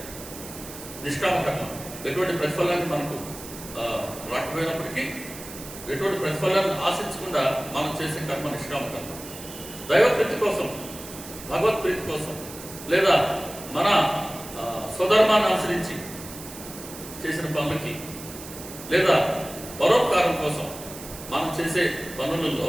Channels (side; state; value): right; noise; hiss, 13 dB below the sound